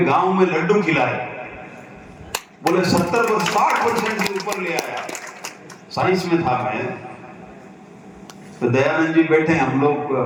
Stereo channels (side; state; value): both; identical; correlation 1.00